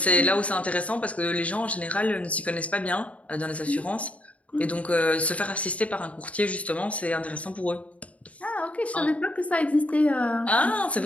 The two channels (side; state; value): right; late; 0.066 ms